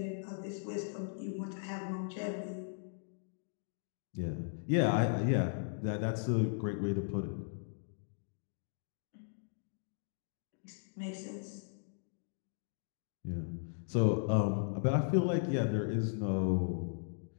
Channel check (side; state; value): right; silent; digital silence